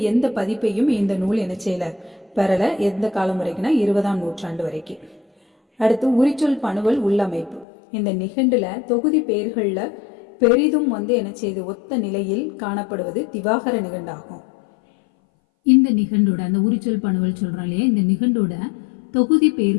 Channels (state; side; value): drops out; right; at 7.7 s